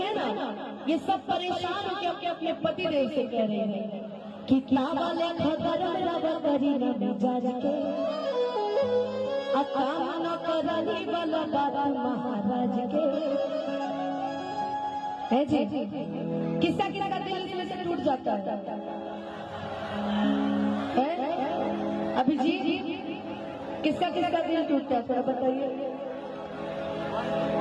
ना, ये सब परेशान होकर अपने अपने पति देव से कह रहे हैं कितना वाले गरम रवा करी न मिजाज के। काम न करनी वाला बाबा महाराज के है जी। किसका किसका दिल इसमें से टूट जाता है? अभी जी किसका किसका दिल टूटता है थोड़ा बताइए।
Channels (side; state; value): both; identical; correlation 1.00